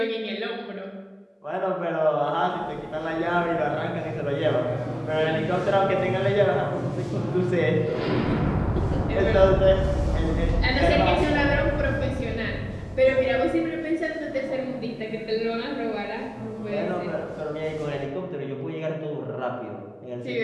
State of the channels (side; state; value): both; identical; correlation 1.00